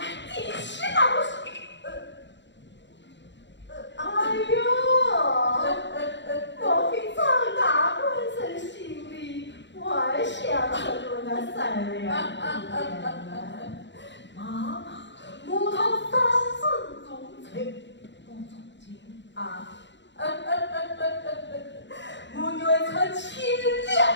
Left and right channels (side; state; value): right; late; 0.52 ms